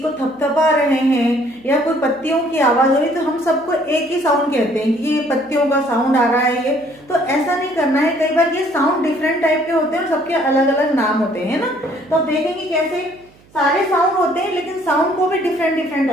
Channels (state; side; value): noise; right; hum, 29 dB below the sound